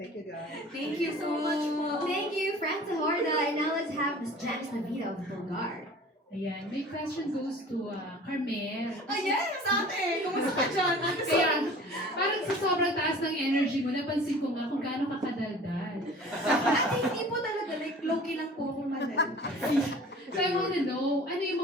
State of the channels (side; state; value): both; normal; correlation 0.44